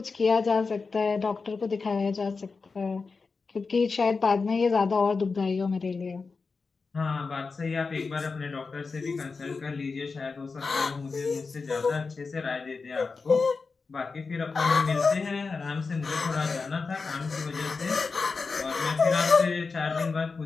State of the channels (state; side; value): quieter; right; 4.5 dB